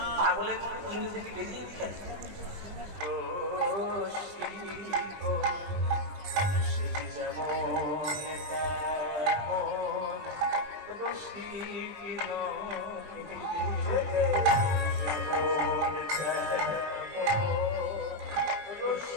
পাগলের ইংরেজি কি বেরিয়ে দিকে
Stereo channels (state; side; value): late; left; 20 ms